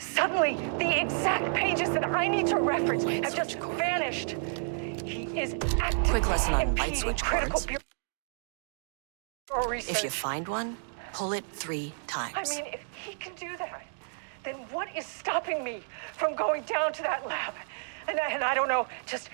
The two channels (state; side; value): silent; left; digital silence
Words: the exact pages that I need to reference have just vanished. He is actively Quick lesson on light impeding switch critical cords. bureau research. If you find one, pull it 3 times. I mean, if he can do that, then what is stopping me from going down to that lab? And I don't know, just